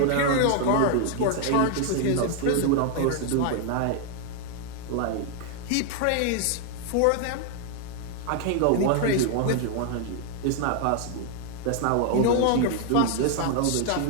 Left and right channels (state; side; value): different; both; correlation 0.00